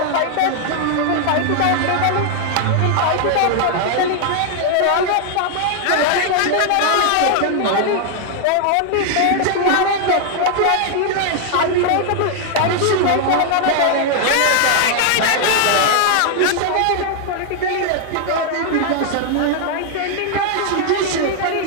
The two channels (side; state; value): both; different; correlation 0.00